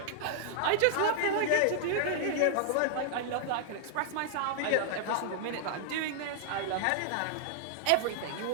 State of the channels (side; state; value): both; different; correlation -0.01